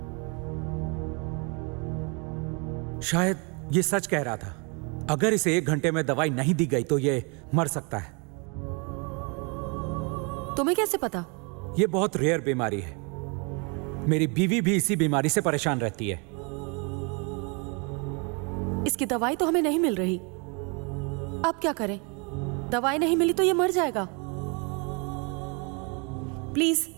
शायद ये सच कह रहा था। अगर इसे 1 घंटे में दवाई नहीं दी गई तो ये मर सकता है। तुम्हें कैसे पता? ये बहुत रेयर बीमारी है। मेरी बीवी भी इसी बीमारी से परेशान रहती है। इसकी दवाई तो हमें नहीं मिल रही। अब क्या करें? दवाई नहीं मिली तो ये मर जाएगा। प्लीज,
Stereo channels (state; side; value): quieter; left; 33.1 dB